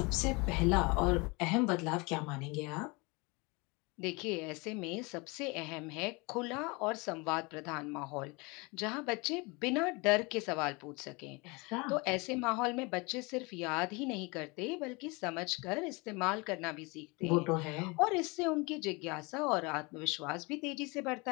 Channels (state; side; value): quieter; right; 27.1 dB